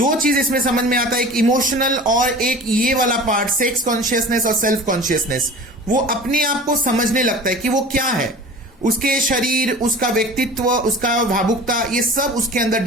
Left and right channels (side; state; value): both; normal; correlation 0.39